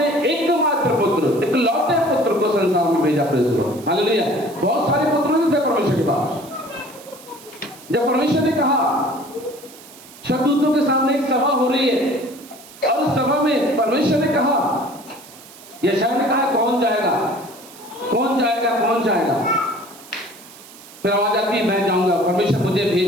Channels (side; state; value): right; noise; hiss, 20 dB below the sound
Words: एकमात्र पुत्र, इकलौते पुत्र को संसार में भेजा? हालेलुया। बहुत सारे पुत्र भी थे परमेश्वर के पास। जब परमेश्वर ने कहा, शब्दूतों के सामने एक सभा हो रही है और उस सभा में परमेश्वर ने कहा, यशायाह ने कहा, कौन जाएगा, कौन जाएगा, कौन जाएगा? फिर आवाज आती है, मैं जाऊंगा, परमेश्वर मुझे